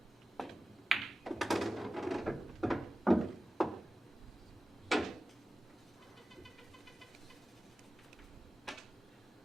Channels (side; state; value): both; normal; correlation 0.96